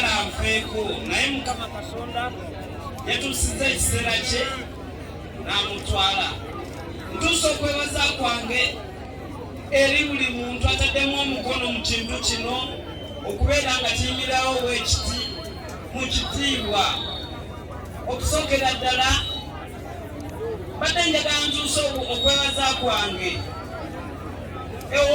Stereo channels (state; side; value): identical; both; correlation 1.00